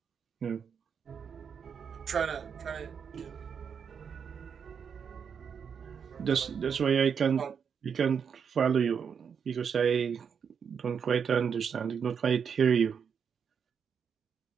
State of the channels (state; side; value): quieter; left; 6.9 dB